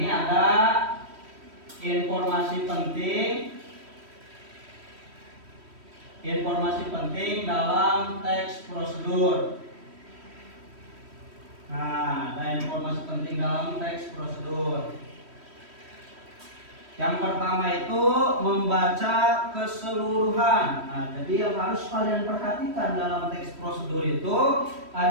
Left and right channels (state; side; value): late; left; 3.1 ms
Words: ada informasi penting. Informasi penting dalam teks prosedur. Nah, ada informasi penting dalam teks prosedur. Yang pertama itu membaca keseluruhan. Nah, jadi yang harus kalian perhatikan dalam teks prosedur itu